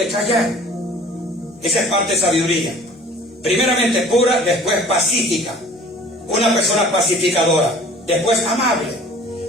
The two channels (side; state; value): both; normal; correlation 0.49